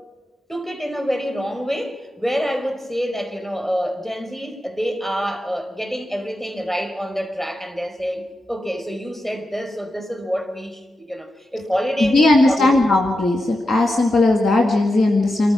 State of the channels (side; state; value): both; normal; correlation 0.89